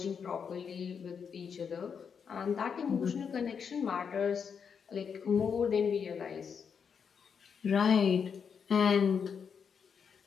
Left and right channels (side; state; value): right; quieter; 6.7 dB